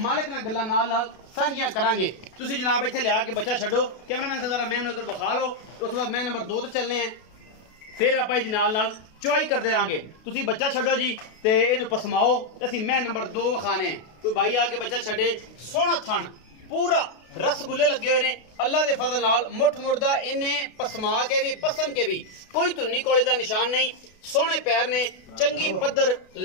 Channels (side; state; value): right; late; 32 ms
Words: मालक नाल गल्लां नाल सांझियां करांगे। तुसीं जनाब इत्थे लिया के बच्चा छड्डो कैमरामैन से जरा मैं इधर विखा लो उस बाद मैं नंबर 2 ते चलने हैं फिर आपां इहदी नाल चुआई करते रहांगे। तुसीं बच्चा छड्डो जी ते इहनूं पसमाओ असीं मैं नंबर 2 विखाने हैं। कोई भाई आके बच्चा छड्डे सोहना थण पूरा रसगुल्ले लगे हुए ने अल्लाह के फजल नाल मुठ मुड़दा इन्हें पसमा के भी पसम के भी कोई धुन्नी कोले का निशान नहीं। सोहने पैर ने चंगी पद्धर